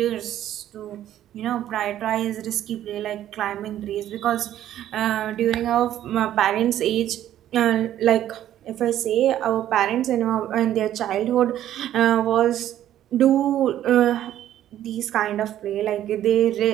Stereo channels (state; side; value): quieter; left; 12.0 dB